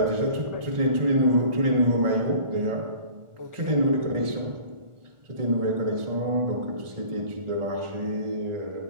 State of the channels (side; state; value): left; late; 1.4 ms